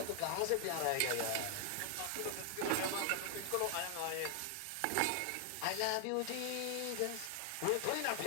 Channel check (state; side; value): different; both; correlation 0.00